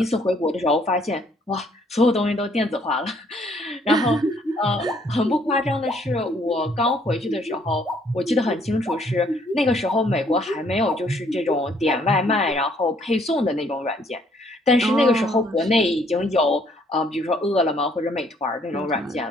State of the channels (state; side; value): normal; both; correlation 0.65